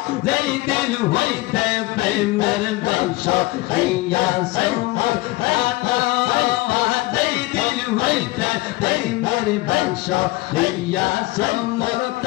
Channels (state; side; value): quieter; right; 20.6 dB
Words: যেই দিন হইতে প্রেমের বংশ হইয়া সমর যেই দিন হইতে প্রেমের বংশ হইয়া সমর